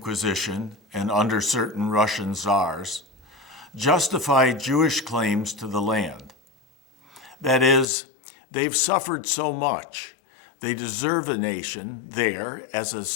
and under certain Russian czars, justify Jewish claims to the land. That is, they've suffered so much, they deserve a nation there as a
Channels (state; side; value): drops out; right; at 7.9 s